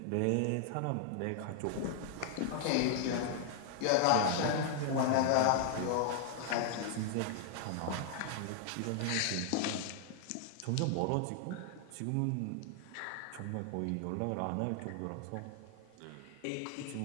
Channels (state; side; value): different; both; correlation 0.00